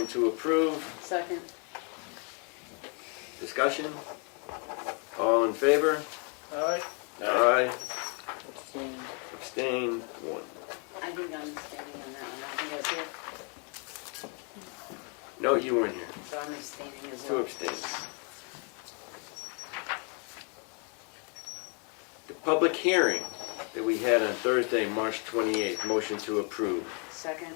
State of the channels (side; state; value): right; quieter; 37.1 dB